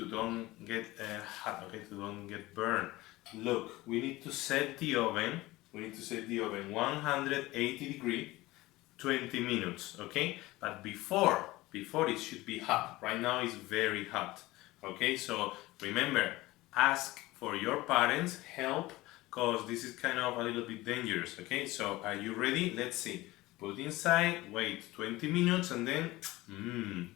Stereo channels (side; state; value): right; quieter; 19.1 dB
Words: don't get hot, okay, to don't get burned. Look, we need to set the oven. We need to set the oven 180 degree, 20 minutes, okay? But before it should be hot. Right now it's very hot, okay? So remember, ask for your parents' help because this is kind of a little bit dangerous, okay? So are you ready? Let's see. Put inside, wait 20 minutes and then,